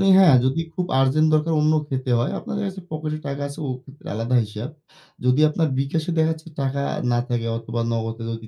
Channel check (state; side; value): identical; both; correlation 1.00